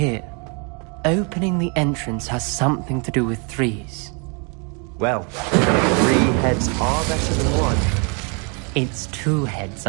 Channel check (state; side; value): quieter; left; 35.0 dB